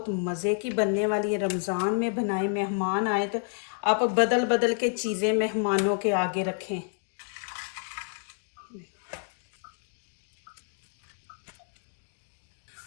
मज़े की बनने वाली है। रमज़ान में बनाए, मेहमान आए तो आप बदल बदल के चीज़ें मेहमानों के आगे रखें।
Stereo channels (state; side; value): silent; right; 56 dB below the other